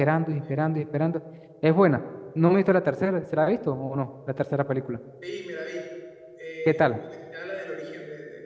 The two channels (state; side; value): identical; both; correlation 1.00